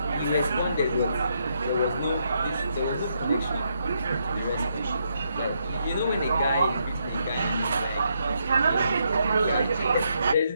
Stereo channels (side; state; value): both; inverted; correlation -0.78